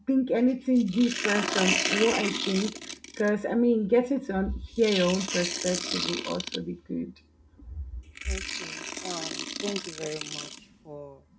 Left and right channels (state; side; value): identical; both; correlation 1.00